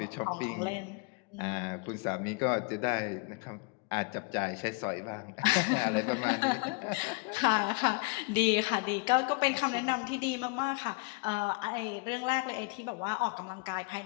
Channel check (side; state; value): right; quieter; 28.6 dB